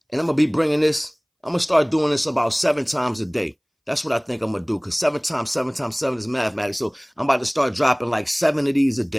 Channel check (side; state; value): both; identical; correlation 1.00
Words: And I'm gonna be bringing this, I'm gonna start doing this about 7 times a day. That's what I think I'm gonna do, because 7 times 7 times 7 is mathematics. So I'm about to start dropping like 7 of these a